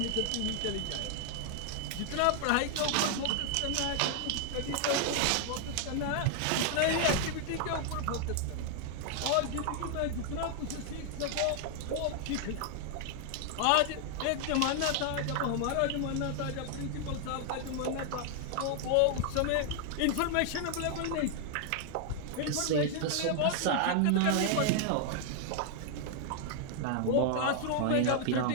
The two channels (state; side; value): different; both; correlation 0.00